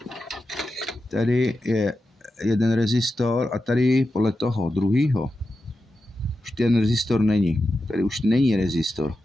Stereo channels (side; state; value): both; normal; correlation 0.90